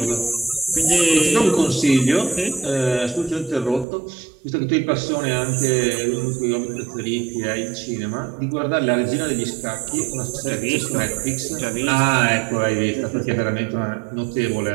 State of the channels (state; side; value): drops out; left; at 3.9 s